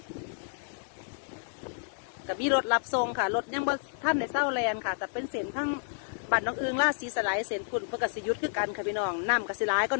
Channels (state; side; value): silent; right; digital silence